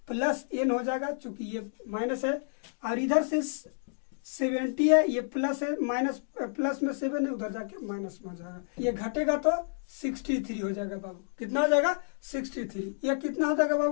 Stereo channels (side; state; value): right; silent; digital silence